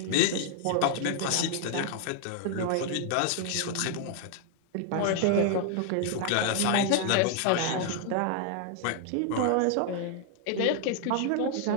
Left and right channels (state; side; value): different; both; correlation 0.00